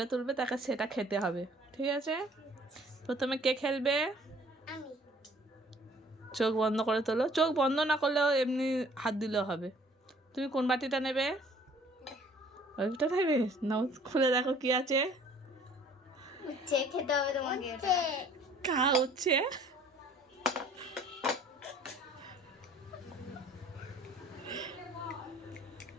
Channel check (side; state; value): both; normal; correlation 0.55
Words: তুলবে তাকে সেটা খেতে হবে, ঠিক আছে? প্রথমে কে খেলবে? চোখ বন্ধ করে তোলো। চোখ বন্ধ না করলেও এমনি হাত দিলেও হবে। তুমি কোন বাটিটা নেবে? ওইটা নেবে? নাও, খুলে দেখো কি আছে। খেতে হবে তোমাকে। কা হচ্ছে